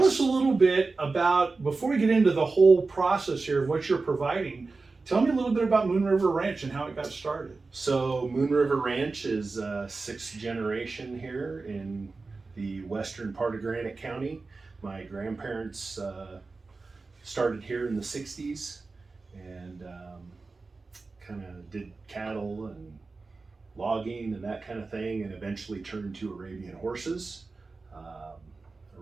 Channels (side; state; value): left; quieter; 3.9 dB